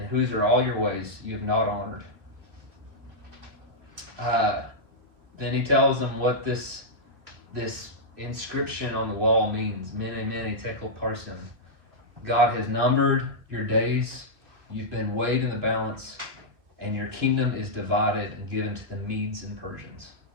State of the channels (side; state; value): left; late; 2.6 ms